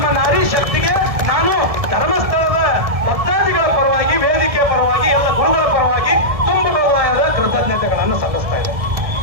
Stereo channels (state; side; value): late; left; 1.6 ms